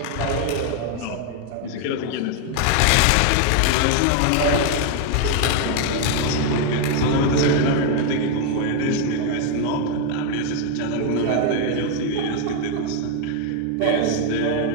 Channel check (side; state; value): both; different; correlation 0.01